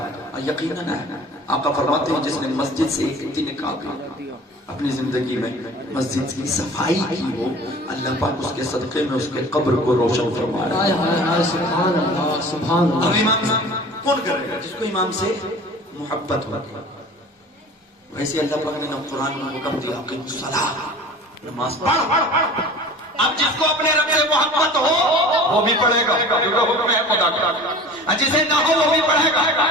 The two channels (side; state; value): both; normal; correlation 0.42